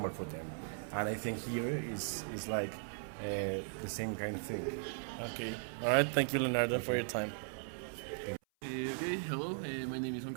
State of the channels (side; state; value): left; silent; 52 dB below the other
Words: for them. And I think here is like the same kind of thing. Okay. All right. Thank you, Leonardo, for your time. Okay, hello. My name is Juan